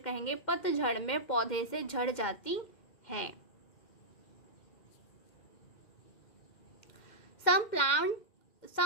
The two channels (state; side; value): late; right; 2.1 ms